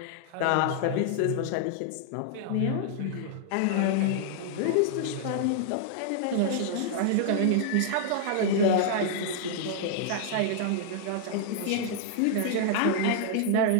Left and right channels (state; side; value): different; both; correlation -0.01